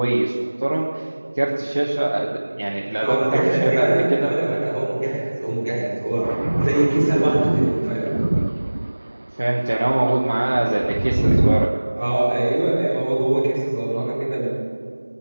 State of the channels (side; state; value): both; inverted; correlation -1.00